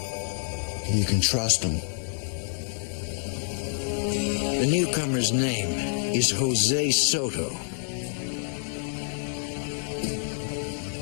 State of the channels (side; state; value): right; silent; digital silence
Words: You can trust him. The newcomer's name is Jose Soto.